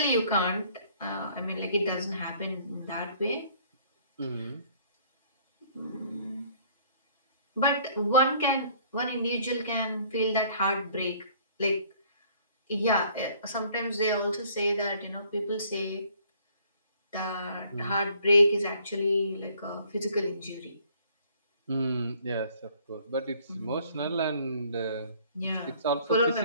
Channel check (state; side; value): inverted; both; correlation -0.59